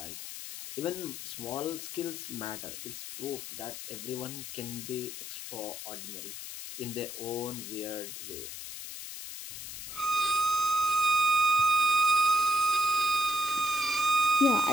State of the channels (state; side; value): noise; left; hiss, 9 dB below the sound